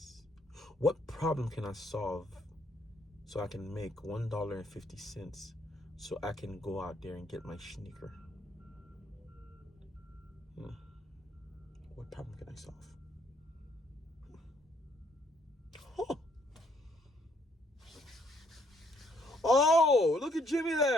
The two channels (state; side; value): normal; both; correlation 0.69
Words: What problem can I solve so I can make $1.50 so I can go out there and get my sneaker? What problem can I solve? Oh, look at Jimmy